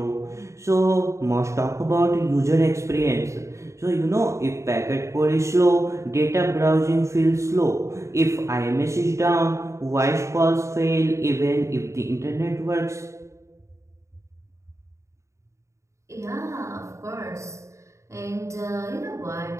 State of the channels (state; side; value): late; left; 0.14 ms